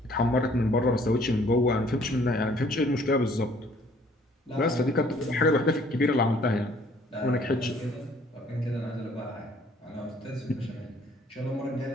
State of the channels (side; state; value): both; normal; correlation 0.59